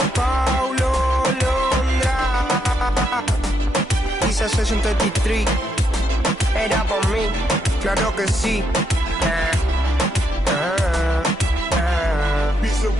Paulo Londra, quizás 63 era por mí, claro que sí. Piece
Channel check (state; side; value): normal; both; correlation 0.78